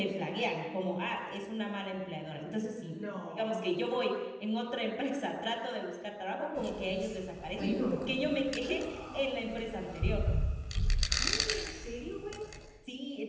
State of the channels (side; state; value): both; identical; correlation 1.00